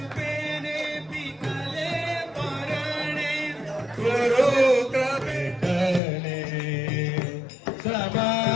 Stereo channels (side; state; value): right; drops out; at 6.0 s